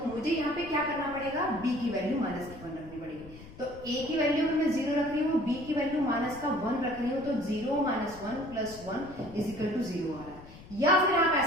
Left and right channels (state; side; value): noise; left; rumble, 17 dB below the sound